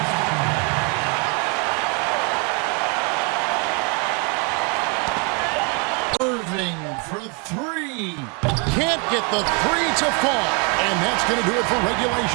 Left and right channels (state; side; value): quieter; left; 33.5 dB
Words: Irving for three. Can't get the three to fall. And that's going to do it for